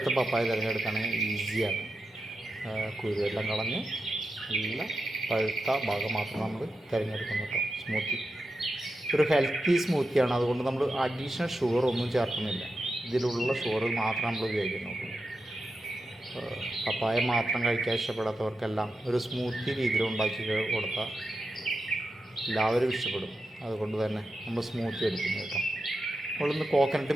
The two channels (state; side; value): normal; both; correlation 0.89